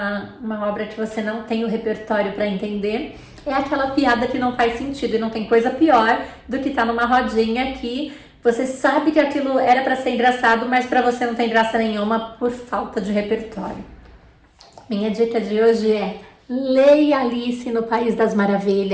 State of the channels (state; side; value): identical; both; correlation 1.00